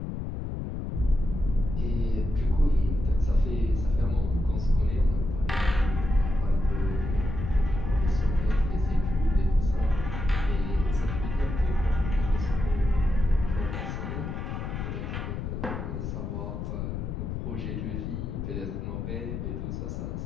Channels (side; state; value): left; noise; rumble, 4 dB below the sound